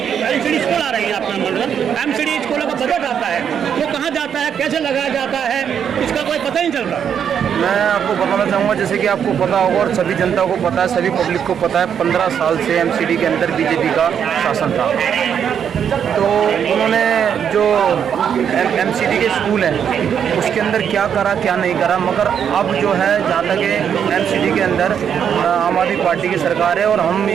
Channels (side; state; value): left; quieter; 8.1 dB